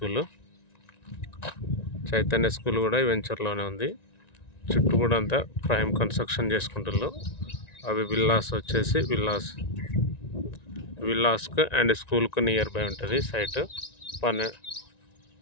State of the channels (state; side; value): late; right; 1.9 ms